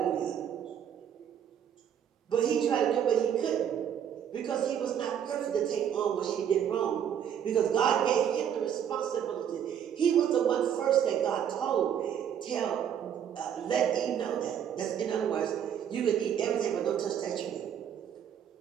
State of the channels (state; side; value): quieter; left; 9.0 dB